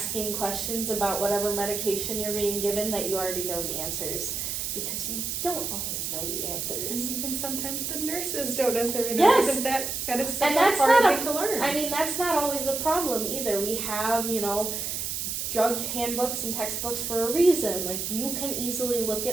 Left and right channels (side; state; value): right; noise; hiss, 3 dB below the sound